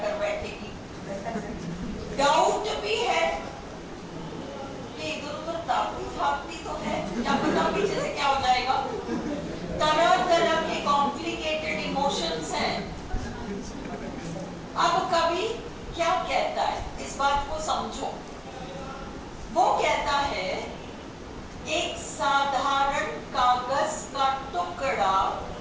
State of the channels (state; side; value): identical; both; correlation 1.00